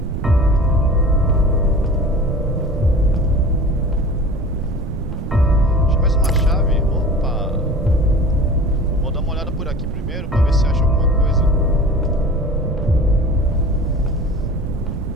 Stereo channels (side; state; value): right; noise; rumble, 5 dB below the sound